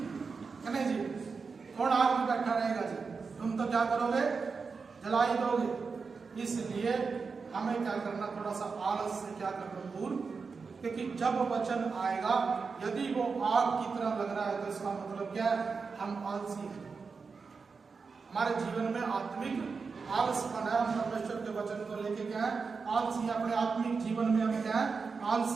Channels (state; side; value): quieter; left; 4.9 dB